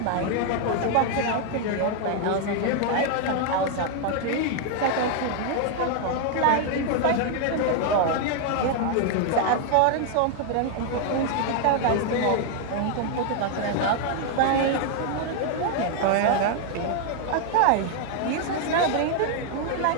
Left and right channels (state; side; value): different; both; correlation 0.00